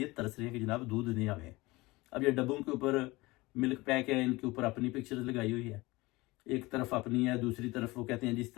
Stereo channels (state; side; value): quieter; right; 21.6 dB